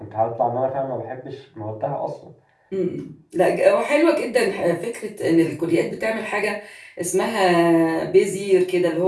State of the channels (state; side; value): identical; both; correlation 1.00